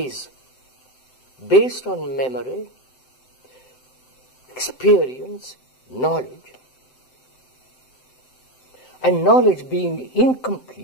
based on memory, experience, knowledge, and knowledge being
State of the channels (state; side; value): late; right; 7.8 ms